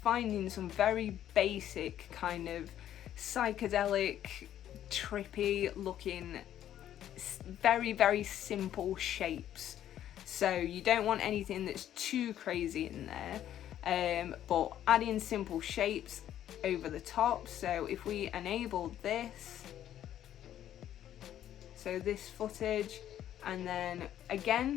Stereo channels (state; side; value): quieter; right; 11.3 dB